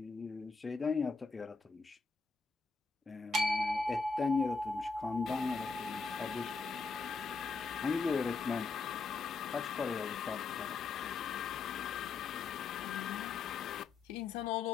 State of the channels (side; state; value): right; quieter; 4.3 dB